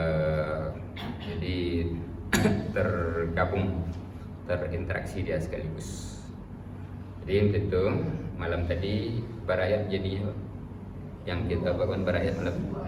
Jadi tergabung, terinteraksi dia sekaligus. Jadi untuk itu malam tadi berayat, jadi yang kita bangun berayat malam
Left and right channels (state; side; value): identical; both; correlation 1.00